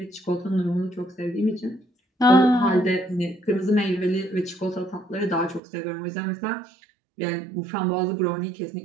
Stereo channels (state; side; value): drops out; left; at 5.6 s